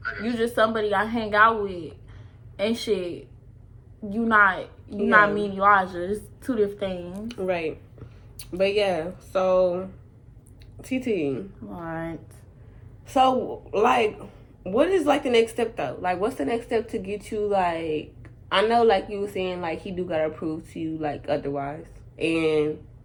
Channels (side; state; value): both; identical; correlation 1.00